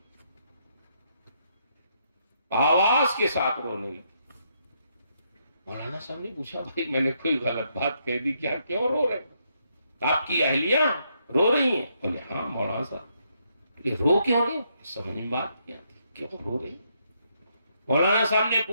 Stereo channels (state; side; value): inverted; both; correlation -0.76